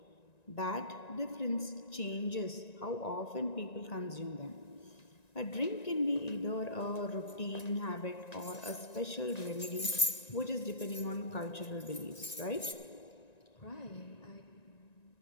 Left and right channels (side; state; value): right; late; 1.9 ms